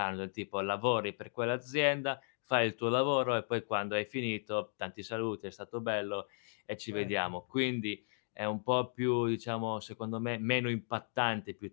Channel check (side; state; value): right; silent; digital silence